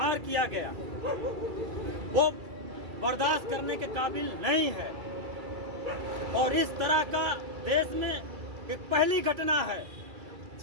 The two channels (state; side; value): late; left; 2.3 ms